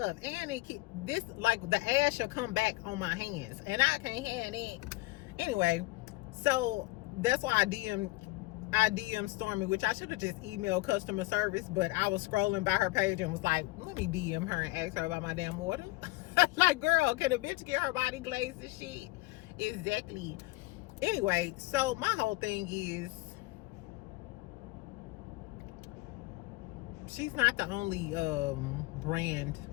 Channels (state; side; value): quieter; right; 21.9 dB